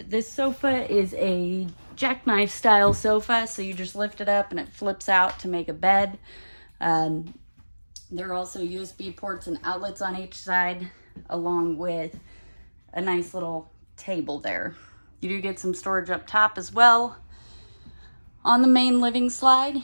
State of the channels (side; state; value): both; inverted; correlation -1.00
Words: this sofa is a jackknife style sofa, so you just lift it up and it flips out to make a bed. There are also USB ports and outlets on each side, along with a nice little table there. You do get some storage up top as well. On the main living slide,